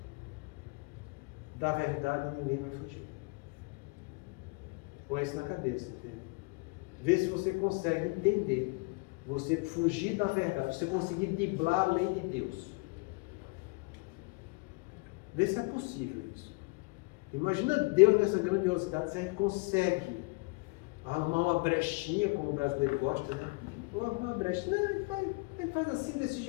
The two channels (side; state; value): right; quieter; 28.4 dB